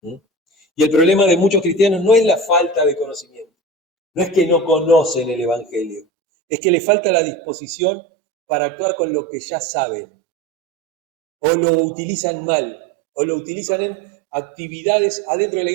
Y el problema de muchos cristianos no es la falta de conocimiento, no es que no conocen el Evangelio, es que les falta la disposición para actuar con lo que ya saben, o lo utilizan mal, o lo utilizan en actividades adentro de la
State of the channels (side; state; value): left; drops out; at 6.1 s